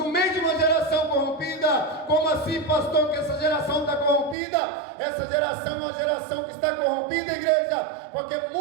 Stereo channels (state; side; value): drops out; left; at 4.4 s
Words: meio de uma geração corrompida. Como assim, pastor, que essa geração está corrompida? Essa geração é uma geração que está corrompida, igreja, porque